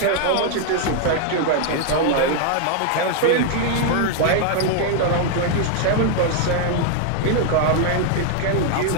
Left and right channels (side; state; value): both; different; correlation 0.00